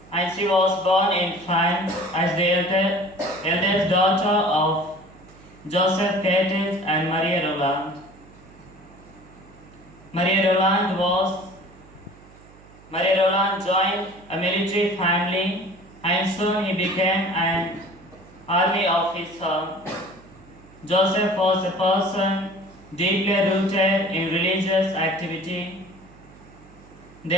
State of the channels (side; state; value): right; noise; hum, 24 dB below the sound